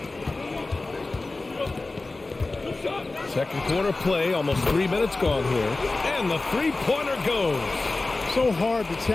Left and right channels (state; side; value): quieter; right; 3.3 dB